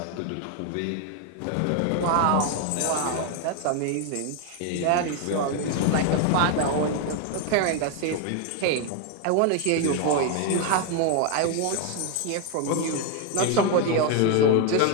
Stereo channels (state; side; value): different; both; correlation 0.01